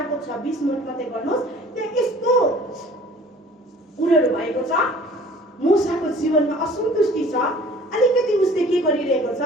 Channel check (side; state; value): both; normal; correlation 0.49